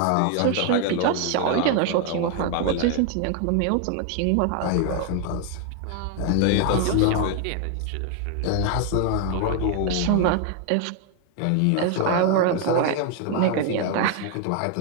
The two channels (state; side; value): different; both; correlation 0.01